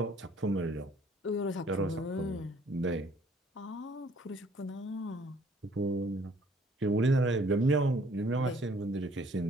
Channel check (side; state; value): both; normal; correlation 0.60